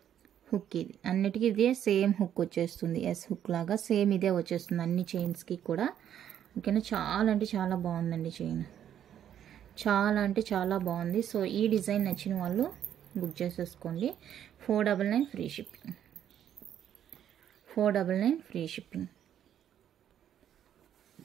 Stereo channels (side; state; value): left; quieter; 10.0 dB